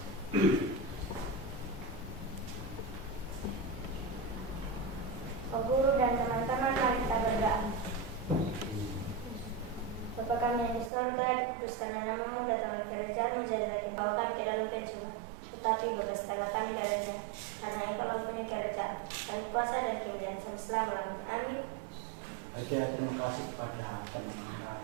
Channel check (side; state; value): left; drops out; at 10.9 s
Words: Pak Guru dan teman-teman, mari kita berdoa. Bapa kami yang di surga, dikuduskanlah namamu, datanglah kerajaanmu, jadilah engkau kami ke dalam pencobaan. Tetapi bebaskanlah kami darinya, karena engkau punya kerajaan dan kuasa dan kemuliaan sampai selama-lamanya. Amin. Oke, terima kasih kepada teman-teman